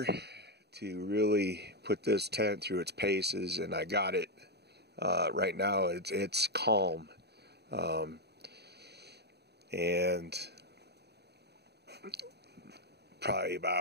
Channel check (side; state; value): left; late; 0.48 ms